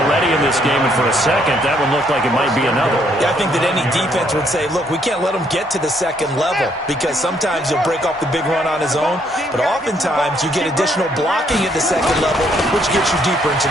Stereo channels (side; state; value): both; normal; correlation 0.69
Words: in this game, and for a second, that one looked like it might be another. Yeah, I think that any defense would say, look, we can't let him get to the second level, because sometimes he'll break off the big run on his own, but oftentimes you get additional blocking at the second level, which gets you deeper into